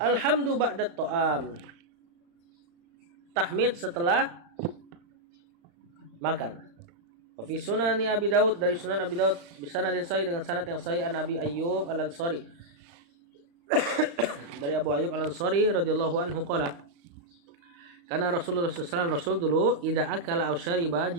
ba'da ta'am. Tahmid setelah makan. Fi sunani Abi Daud, dari Sunan Abi Daud bisanadin sahih, dengan sanad yang sahih, an Abi Ayyub Al-Ansari, dari Abu Ayyub Al-Ansari radhiyallahu anhu qala, karena Rasulullah SAW, Rasul dulu idza akala aw syariba,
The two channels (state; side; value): late; left; 35 ms